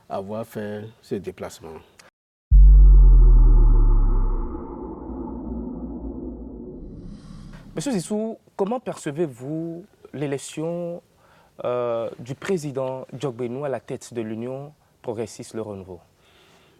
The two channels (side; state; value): both; identical; correlation 1.00